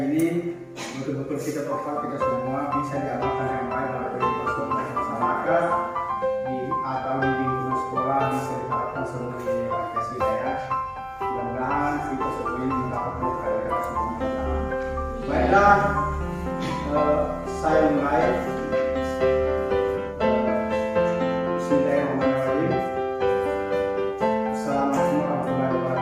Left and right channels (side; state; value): both; identical; correlation 1.00